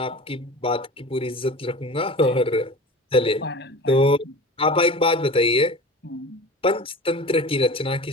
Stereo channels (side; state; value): both; normal; correlation 0.36